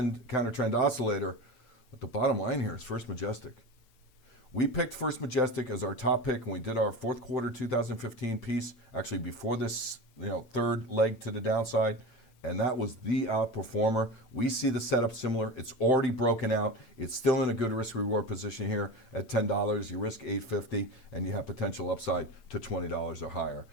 trend oscillator. But the bottom line here is First Majestic. We picked First Majestic as our top pick when we did our fourth quarter 2015 piece, actually before this third leg to the downside, and that was the outperformer. We see the setup similar. It's already broken out. It's still in a good risk-reward position here at $10. You risk $8.50, and you have potential upside to $20 or higher.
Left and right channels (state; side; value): late; right; 8.8 ms